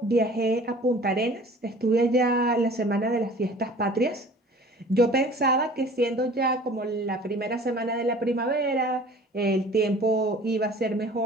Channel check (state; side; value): normal; both; correlation 0.47